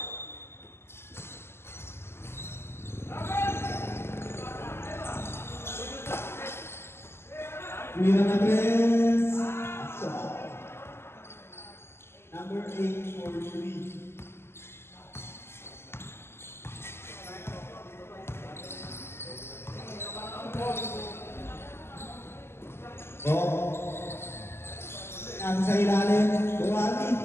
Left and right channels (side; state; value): right; late; 0.12 ms